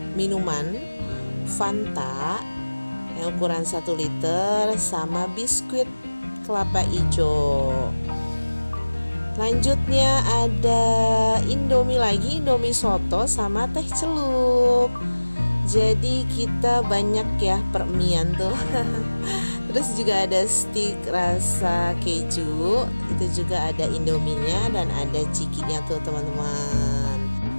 minuman Fanta yang ukuran 1 liter sama biskuit kelapa hijau. Lanjutnya ada indomie lagi, indomie soto sama teh celup. Jadi kita banyak ya permian tuh. Terus juga ada stik rasa keju, itu juga ada indominya dan ada cikinya tuh teman-teman.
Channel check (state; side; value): inverted; both; correlation -1.00